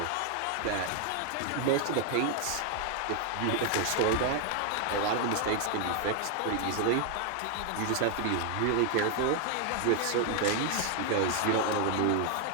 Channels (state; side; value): different; both; correlation 0.00